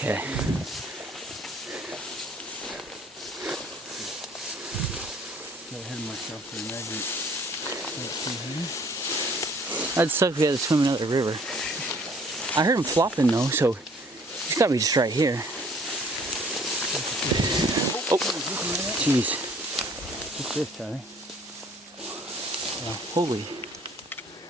That'd suck if we had to swim another river. I heard him flopping though, so he's gotta be just right here. Oh, jeez. What's this, Tyler? Holy.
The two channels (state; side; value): normal; both; correlation 0.57